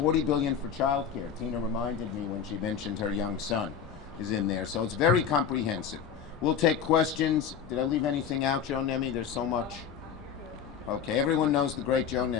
billion for childcare. Tina reminded me when she mentioned her young son is in there, so it's very comprehensive. We'll take questions. Did I leave anything out, Joe Nemi? There's so much. Okay, everyone knows the great Joe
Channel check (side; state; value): right; quieter; 7.5 dB